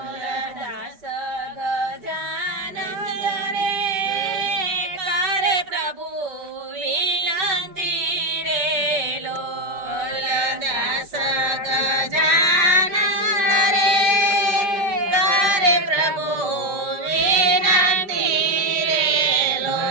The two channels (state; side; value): late; left; 5.1 ms